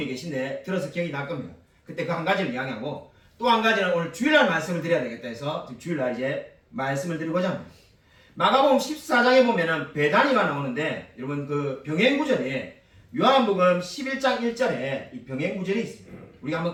계신데 들어서 기억이 날 겁니다. 그때 그 한 가지를 이야기하고 또 한 가지는 오늘 주일날 말씀을 드려야 되겠다 해서 주일날 이제 말씀을 드리고자 합니다. 마가복음 14장에 보면은 배단위가 나오는데 여러분 그 병행구절에 요한복음 11장 1절에 이 병행구절이 있습니다. 우리가 한번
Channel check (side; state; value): both; identical; correlation 1.00